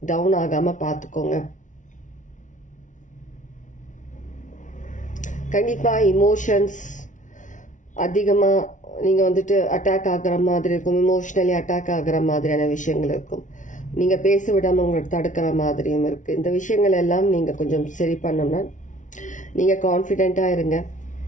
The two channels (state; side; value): late; right; 0.37 ms